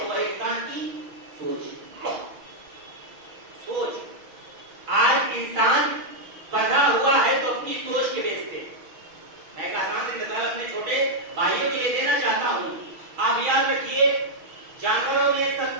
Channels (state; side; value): late; left; 6.3 ms